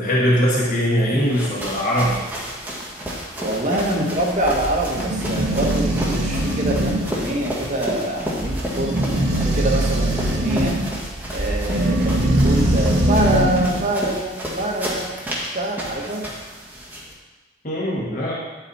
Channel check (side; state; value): both; normal; correlation 0.53